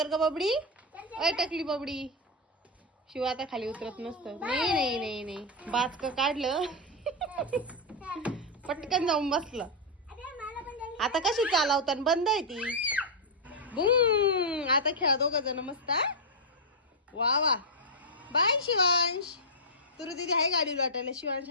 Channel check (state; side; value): normal; both; correlation -0.02